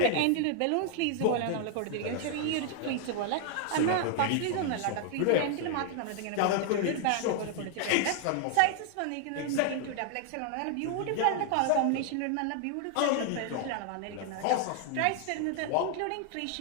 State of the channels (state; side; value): different; both; correlation 0.00